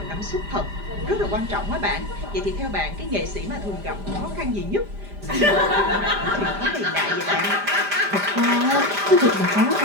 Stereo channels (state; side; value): late; left; 5.0 ms